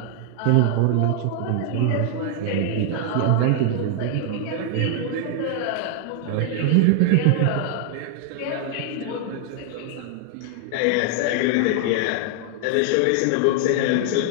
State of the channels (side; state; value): both; different; correlation 0.00